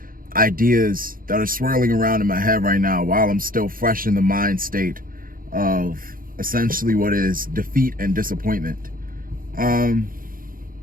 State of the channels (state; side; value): late; left; 0.41 ms